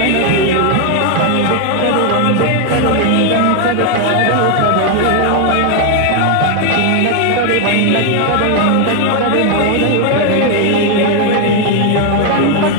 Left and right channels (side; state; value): both; different; correlation 0.00